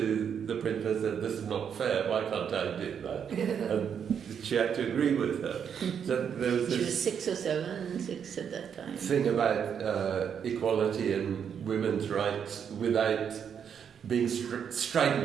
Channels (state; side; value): quieter; left; 7.7 dB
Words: the principal and said, this is not fair, why can't I do that? And she had to agree with her. So there was She this was 6 or 7, 6 at that time. thing about equality and women's rights without being